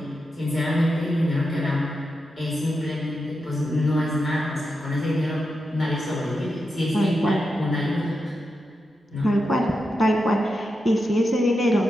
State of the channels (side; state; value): both; normal; correlation 0.87